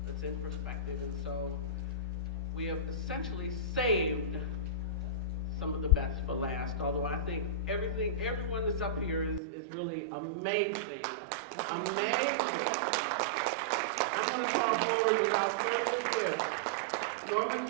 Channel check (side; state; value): left; drops out; at 9.4 s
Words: that's in perspective. And so we have essentially saved some of the best for last, although I think everyone that's up here is really amazing. Amazing. I'm going to call forward without further ado Norma